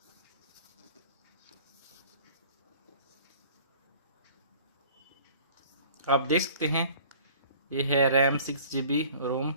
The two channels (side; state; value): both; inverted; correlation -0.50